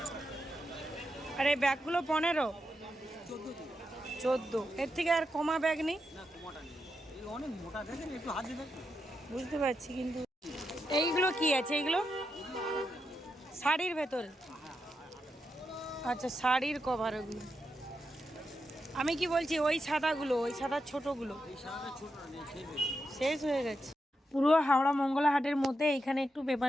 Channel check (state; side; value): normal; both; correlation 0.85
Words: আর এই ব্যাগগুলো 15, 14। এর থেকে আর কমা ব্যাগ নেই? না, কমাটা নেই। এই অনেক মোটা, দেখেন একটু হাত দিয়ে দেখুন। বুঝতে পারছি, কিন্তু এইগুলো কি আছে? এইগুলো শাড়ির ভেতরে? আচ্ছা, শাড়ির কভার ওগুলো। আমি কি বলছি, ওই সাদাগুলো, ওই সাদা ছোটগুলো এই সাদাটা ছোট না, নেই, শেষ হয়ে গেছে। শেষ হয়ে গেছে। পুরো হাওড়া মঙ্গলা হাটের মধ্যে এখানে একটু